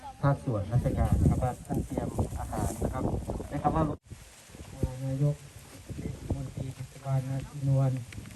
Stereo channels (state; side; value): identical; both; correlation 1.00